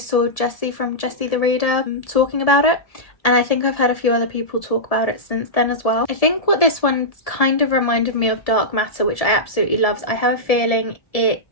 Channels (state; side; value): late; right; 1.7 ms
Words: Jessie from Jessie the Reader talking about it. And I think I've heard a few other people talk about it since then as well. I think what this one kind of reminded me of Dark Matter, which I absolutely loved. I have a feeling